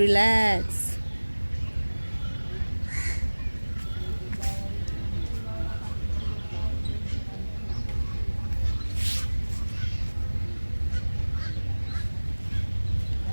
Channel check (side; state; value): both; inverted; correlation -1.00